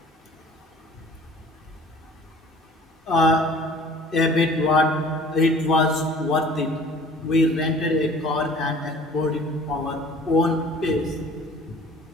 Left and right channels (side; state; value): both; normal; correlation 0.49